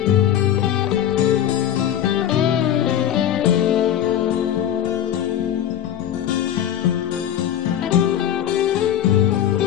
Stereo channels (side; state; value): right; quieter; 10.5 dB